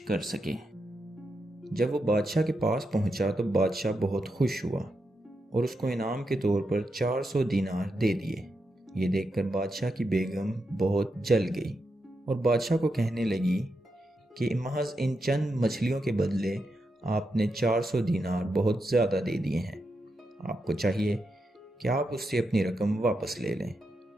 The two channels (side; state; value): both; normal; correlation 0.85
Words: کر سکے۔ جب وہ بادشاہ کے پاس پہنچا تو بادشاہ بہت خوش ہوا اور اس کو انعام کے طور پر 400 دینار دے دیے۔ یہ دیکھ کر بادشاہ کی بیگم بہت جل گئی اور بادشاہ کو کہنے لگی کہ محض ان چند مچھلیوں کے بدلے آپ نے 400 دینار بہت زیادہ دے دیے ہیں۔ آپ کو چاہیے کہ آپ اس سے اپنی رقم واپس لے لیں۔